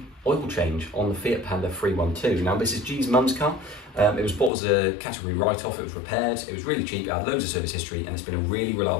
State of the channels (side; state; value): right; drops out; at 4.5 s